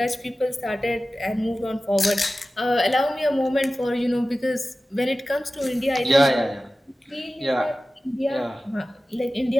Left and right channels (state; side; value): normal; both; correlation 0.96